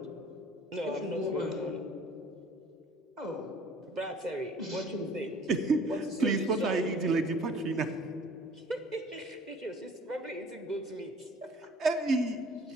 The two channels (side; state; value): both; normal; correlation 0.51